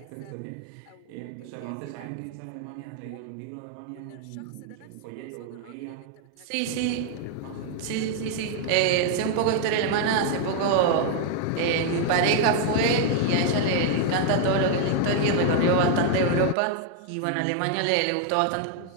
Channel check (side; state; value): both; different; correlation 0.00